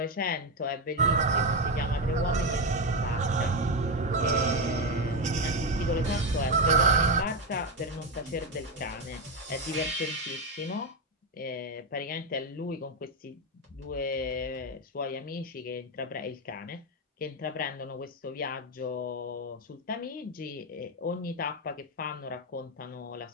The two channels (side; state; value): both; normal; correlation 0.10